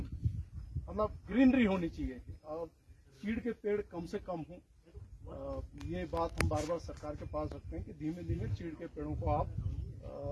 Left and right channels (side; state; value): both; identical; correlation 1.00